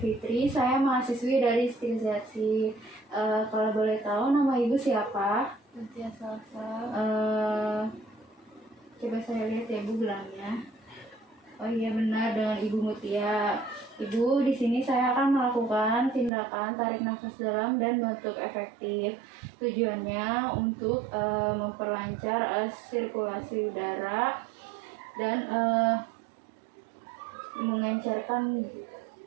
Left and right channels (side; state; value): left; drops out; at 16.3 s